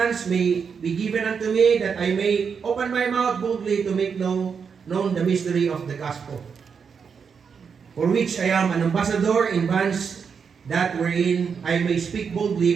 may be given unto me, that I may open my mouth boldly to make known the mystery of the gospel, for which I am an ambassador in bonds, that wherein I may speak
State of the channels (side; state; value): left; quieter; 6.2 dB